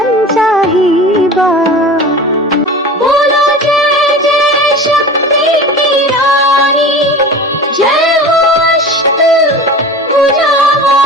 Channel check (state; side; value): normal; both; correlation 0.36